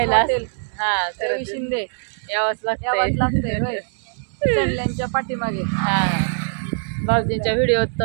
रवी शिंदे यावंच लागतंय होय. चढल्यांच्या पाठीमागे. भाऊजींच्या व्हिडिओत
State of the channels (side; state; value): left; silent; digital silence